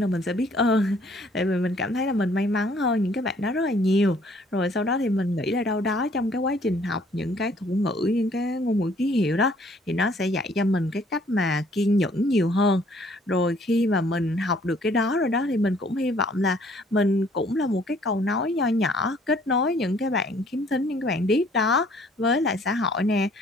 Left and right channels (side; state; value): both; normal; correlation 0.60